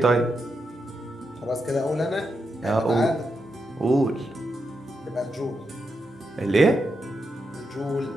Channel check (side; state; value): both; normal; correlation 0.85